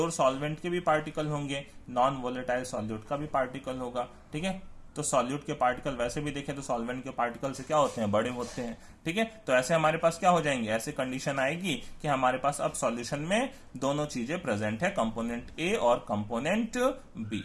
सॉल्वेंट के भी पार्टिकल होंगे, नॉन वोलेटाइल सॉल्यूट का भी पार्टिकल होगा। ठीक है, तो सॉल्यूट के पार्टिकल वैसे भी देखें तो सॉल्वेंट के पार्टिकल से क्या होते हैं, बड़े होते हैं। ठीक है, तो ऐसे हमारे पास क्या हो जाएंगे, ऐसे कंडीशन आएगी कि हमारे पास अब सॉल्यूशन में दोनों चीजें प्रेजेंट है, कंपोनेंट A और कंपोनेंट B।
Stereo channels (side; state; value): both; identical; correlation 1.00